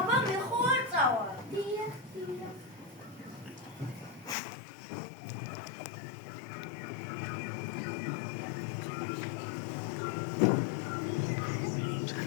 მე ხო არ წავალ. დიახ.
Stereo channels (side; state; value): right; drops out; at 4.4 s